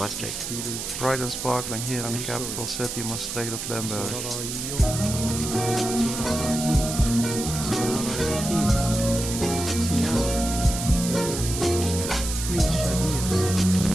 Bright and sparkling here in the capital city, Maastricht of Limburg.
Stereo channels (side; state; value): right; noise; hiss, 5 dB below the sound